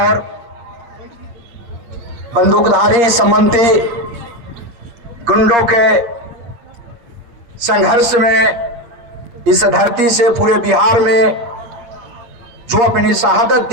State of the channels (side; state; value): left; late; 8.5 ms